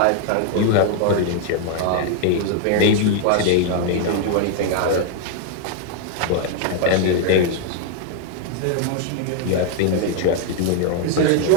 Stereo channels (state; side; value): different; both; correlation 0.01